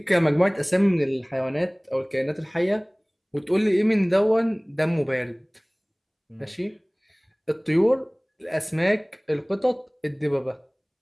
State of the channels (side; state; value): both; identical; correlation 1.00